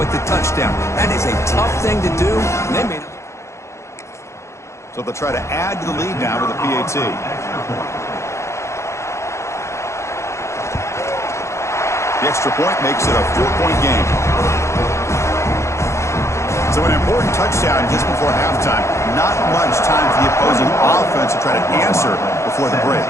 the touchdown. That is a tough thing to do, and they made it. So they'll try to add to the lead now with a PAT. The extra point makes it a 4-point game. So an important touchdown just before halftime. Not much time for the opposing offense to try to answer before the break.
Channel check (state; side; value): late; right; 0.14 ms